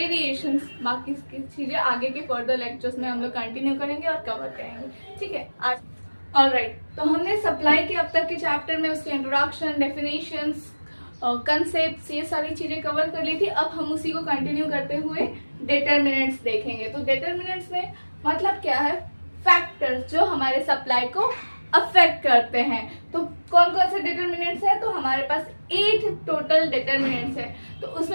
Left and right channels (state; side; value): inverted; both; correlation -1.00